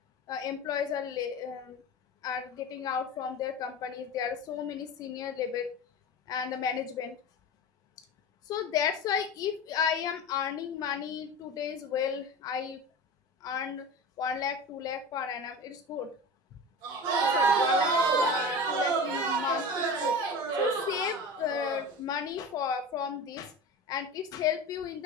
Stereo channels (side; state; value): both; normal; correlation 0.30